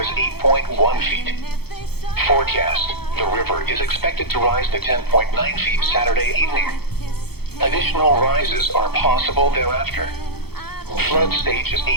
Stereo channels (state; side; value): late; right; 0.96 ms